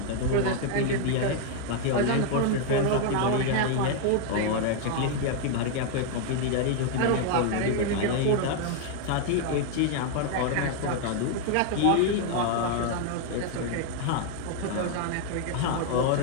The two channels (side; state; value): both; different; correlation 0.00